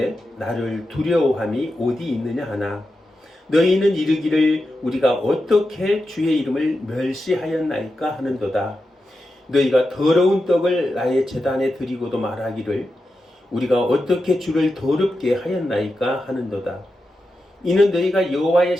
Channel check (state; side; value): normal; both; correlation 0.90